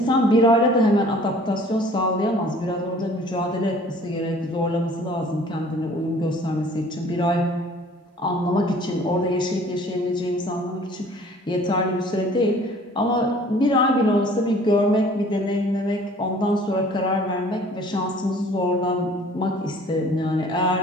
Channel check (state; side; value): normal; both; correlation 0.52